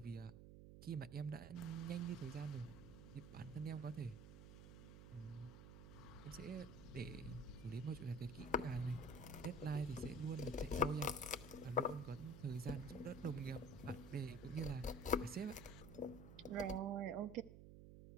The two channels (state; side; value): noise; right; hum, 13 dB below the sound